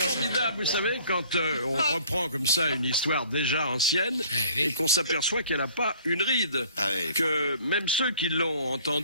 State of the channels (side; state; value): both; inverted; correlation -0.53